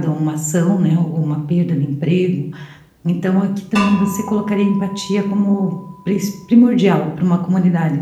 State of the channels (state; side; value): identical; both; correlation 1.00